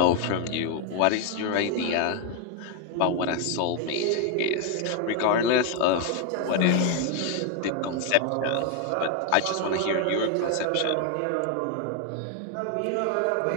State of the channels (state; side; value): different; both; correlation 0.01